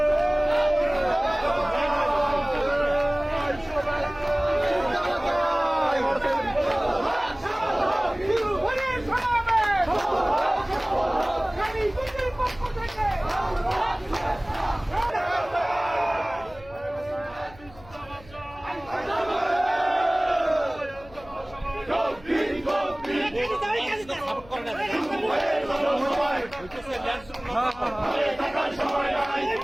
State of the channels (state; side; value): noise; left; hum, 22 dB below the sound